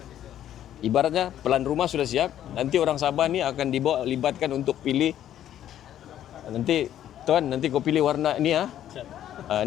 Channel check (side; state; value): right; quieter; 11.3 dB